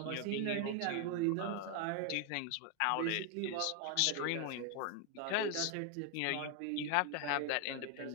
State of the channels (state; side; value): different; both; correlation 0.01